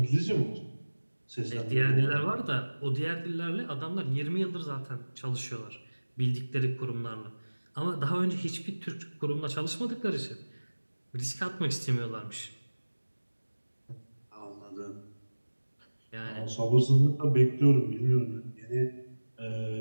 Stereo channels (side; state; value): both; inverted; correlation -1.00